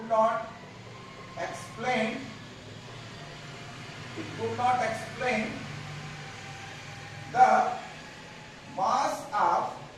the mass of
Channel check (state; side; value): identical; both; correlation 1.00